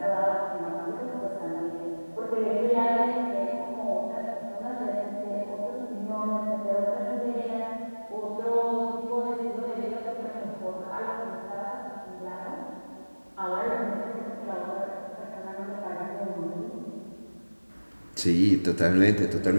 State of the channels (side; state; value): both; inverted; correlation -1.00